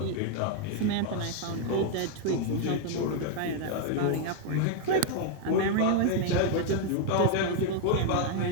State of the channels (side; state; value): both; different; correlation 0.00